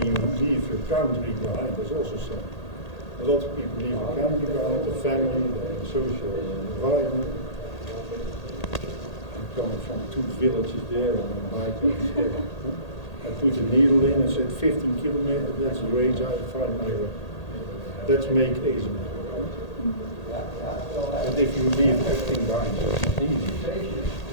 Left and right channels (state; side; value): late; right; 1.8 ms